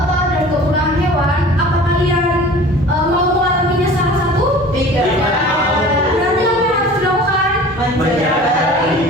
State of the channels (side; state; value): both; normal; correlation 0.43